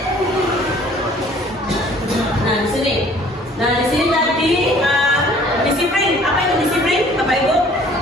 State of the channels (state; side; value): normal; both; correlation 0.54